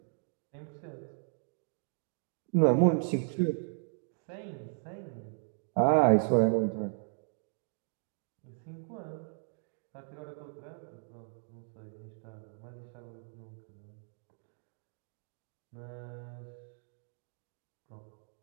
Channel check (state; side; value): silent; left; 54 dB below the other